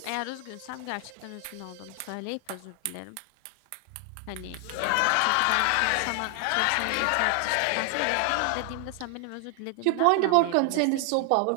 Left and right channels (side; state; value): both; different; correlation 0.00